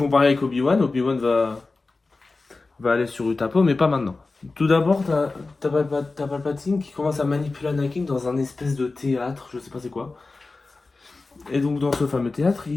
pareil avec Obi-Wan. Obi-Wan va aller sur Utapo, mais pas maintenant. Tout d'abord, t'as Palpatine qui commence à manipuler Anakin dans un espèce de théâtre, je sais pas c'est quoi. Et donc dans ce fameux théâtre,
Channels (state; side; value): quieter; right; 3.6 dB